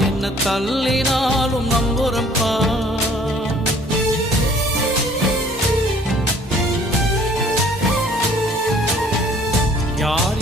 என்ன தள்ளினாலும் நம்புறம்பா. யார்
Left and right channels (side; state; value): both; normal; correlation 0.56